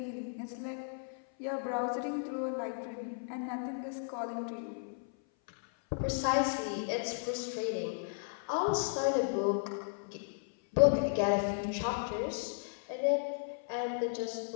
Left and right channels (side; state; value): right; silent; 55 dB below the other